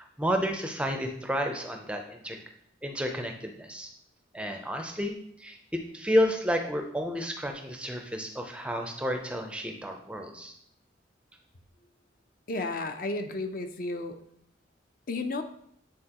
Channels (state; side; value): normal; both; correlation 0.70